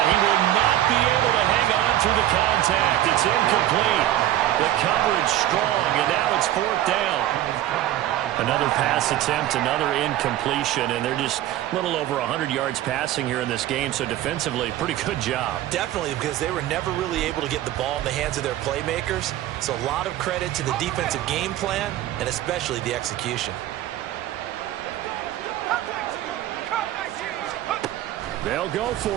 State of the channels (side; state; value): left; quieter; 13.5 dB